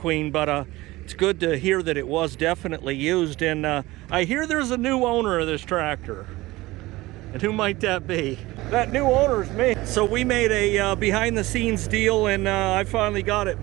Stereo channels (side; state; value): left; quieter; 19.4 dB